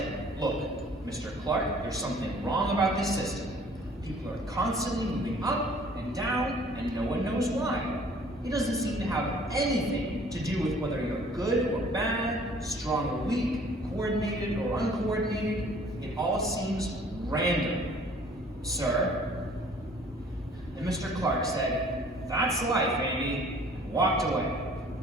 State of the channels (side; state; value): both; normal; correlation 0.54